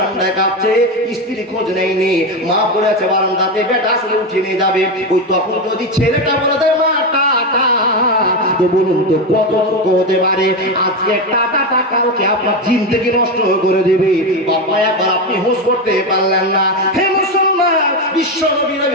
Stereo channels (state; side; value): normal; both; correlation 0.14